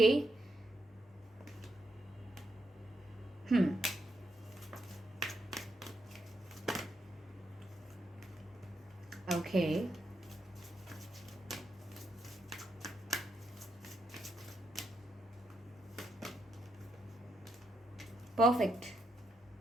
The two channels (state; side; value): normal; both; correlation 0.82